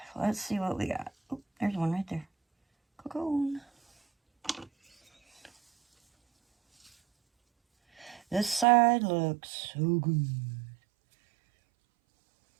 see what we got. Oh, there's one right there. Cocoon. This side looks so good.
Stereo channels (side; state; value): left; drops out; at 8.7 s